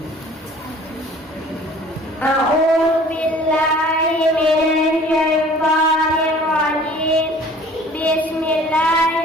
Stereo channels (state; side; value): normal; both; correlation 0.49